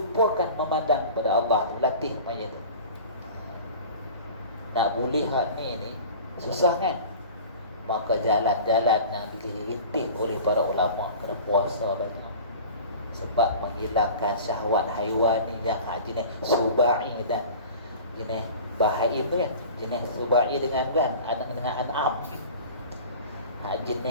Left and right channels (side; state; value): both; inverted; correlation -0.39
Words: memandang kepada Allah tu, latih macam tu. Nak boleh hak ni susah kan? Maka jalan-jalan yang dilintih oleh para ulama kena puasa banyak. Sebab menghilangkan syahwat haywani yang jenis subai dan jenis bahaim tu kan. Jenis subai dengan kan, dengan an'am.